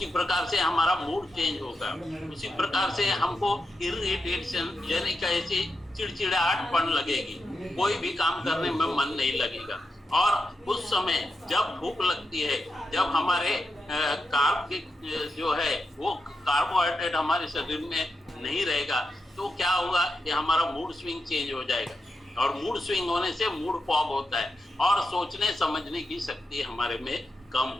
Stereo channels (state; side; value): normal; both; correlation 0.87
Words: प्रकार से हमारा मूड चेंज होगा, उसी प्रकार से हमको इरिटेशन यानी कैसे चिड़चिड़ाहटपन लगेगी, कोई भी काम करने में मन नहीं लगेगा। और उस समय जब भूख लगती है, जब हमारे कार्ब जो है वो कार्बोहाइड्रेट हमारे शरीर में नहीं रहेगा, तो क्या होगा कि हमारा मूड स्विंग चेंज हो जाएगा, और मूड स्विंग होने से मूड फॉग होता है, और सोचने समझने की शक्ति हमारे में कम